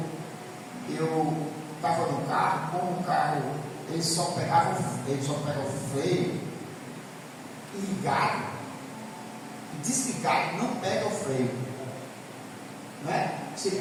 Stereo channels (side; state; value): both; identical; correlation 1.00